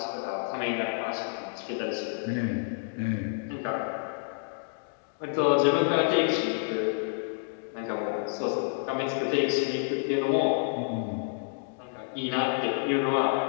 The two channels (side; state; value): right; silent; digital silence